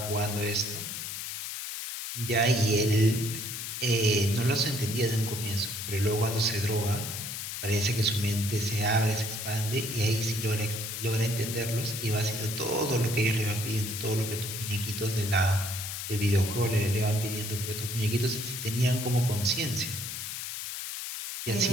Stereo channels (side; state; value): left; noise; hiss, 6 dB below the sound